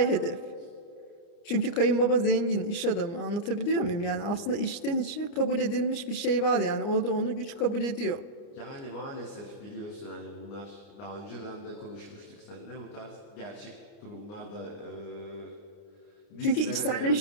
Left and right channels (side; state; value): right; late; 30 ms